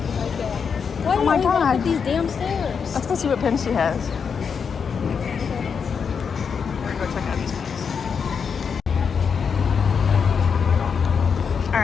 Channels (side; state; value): right; quieter; 6.3 dB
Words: right there. Why Oh my do we walk god. up these damn stairs? Let's go see what pins she has. We're going to go check out these pins.